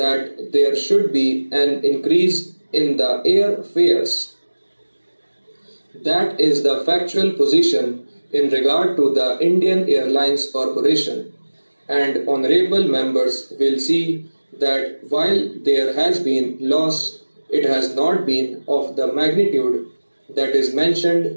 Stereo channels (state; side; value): inverted; both; correlation -1.00